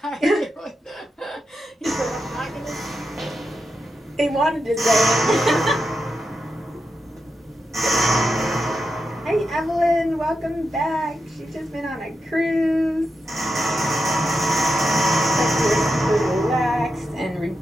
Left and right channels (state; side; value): normal; both; correlation 0.87